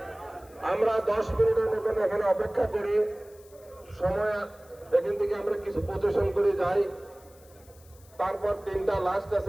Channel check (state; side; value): noise; left; hiss, 27 dB below the sound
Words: আমরা 10 মিনিটের মতন এখানে অপেক্ষা করি, সময় এখান থেকে আমরা কিছু প্রচেশন করে যাই, তারপর 3টা লাস্ট